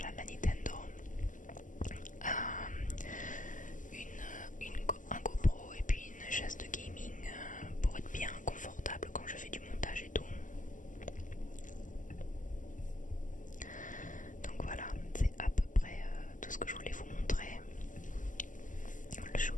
la Nintendo, un GoPro et puis une chaise de gaming pour être bien confortable quand je fais du montage et tout. Donc voilà, c'est à peu près tout ce que je voulais vous montrer. Le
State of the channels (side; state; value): right; late; 0.38 ms